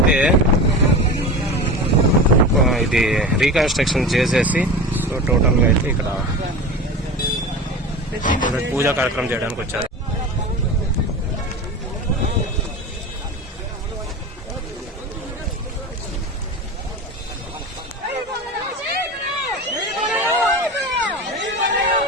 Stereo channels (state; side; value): normal; both; correlation 0.30